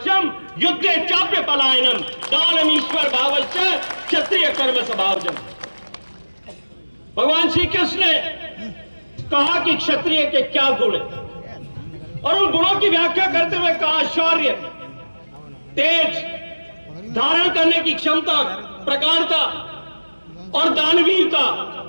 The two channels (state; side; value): inverted; both; correlation -1.00